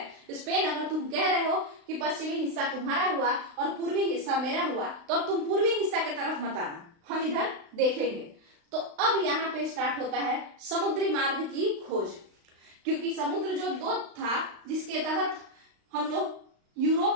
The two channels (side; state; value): left; late; 35 ms